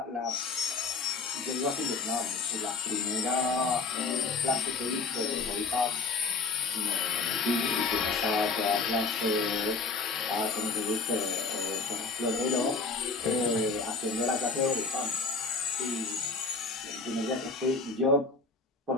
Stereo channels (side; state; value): right; quieter; 4.2 dB